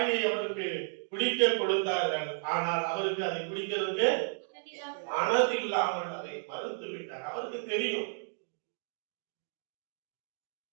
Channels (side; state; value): left; silent; 56 dB below the other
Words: அவருக்கு குடிக்க கொடுத்தார்கள், ஆனால் அவருக்கு அதை குடிக்கிறதுக்கு மனது இல்லாமல் அதை மறுத்து விட்டார். அவருக்கு தெரியும்.